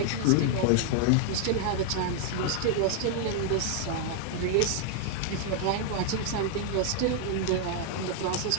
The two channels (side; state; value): both; different; correlation 0.00